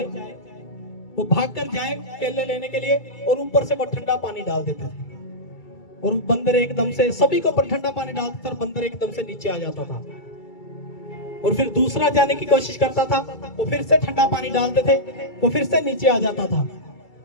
जाए केले लेने के लिए, और ऊपर से वो ठंडा पानी डाल देते थे। और बंदर एकदम से, सभी को ऊपर ठंडा पानी डालते थे, बंदर एकदम से नीचे आ जाता था। और फिर दूसरा जाने की कोशिश करता था, वो फिर से ठंडा पानी डालते थे, वो फिर से नीचे आ जाता था।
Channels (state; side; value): late; right; 2.3 ms